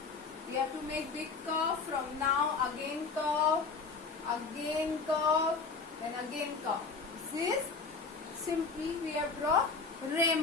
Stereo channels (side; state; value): right; quieter; 4.6 dB